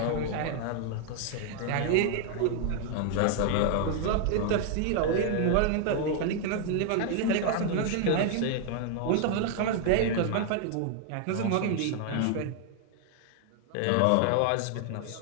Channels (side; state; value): both; different; correlation 0.00